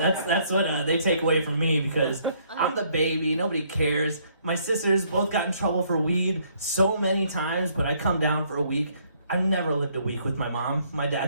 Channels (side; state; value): both; inverted; correlation -0.67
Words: what they take away from me because I'm the baby. Nobody cares. My sisters both got in trouble for weed so many times, but I come down for a week. I've never lived a week with my mom. My